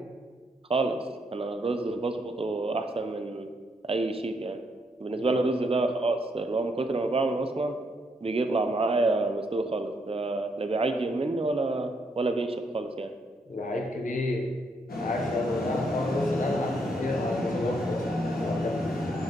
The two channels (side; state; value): both; normal; correlation 0.75